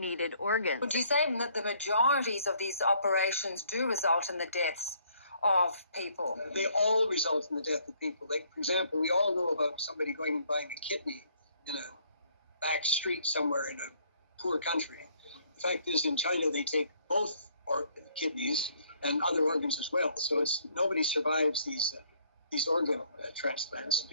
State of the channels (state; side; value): inverted; both; correlation -0.65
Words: organs. Would you say that the majorities of these operations do result in the deaths of people? They all result in the death of people. Like, for example, we all know about somebody going and buying a kidney in a back street somewhere in a poor country. The fact is, in China, they take both kidneys and other organs as well. So nobody survives these organ transplants